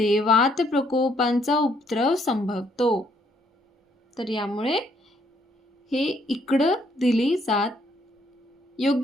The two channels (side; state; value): both; normal; correlation 0.69